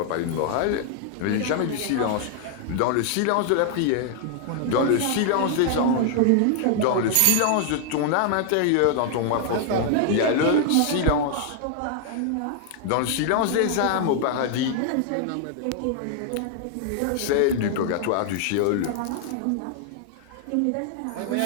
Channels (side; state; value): both; different; correlation 0.00